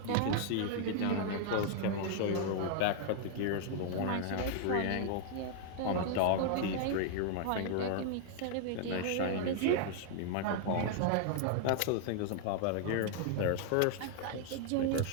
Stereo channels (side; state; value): both; different; correlation -0.01